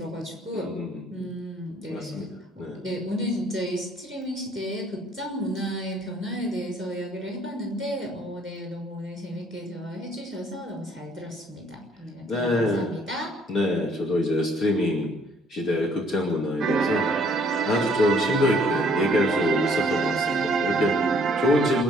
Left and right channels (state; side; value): normal; both; correlation 0.62